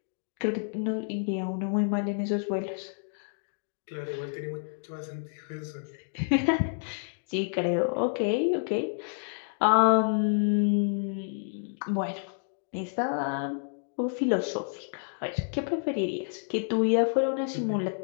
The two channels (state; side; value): silent; right; digital silence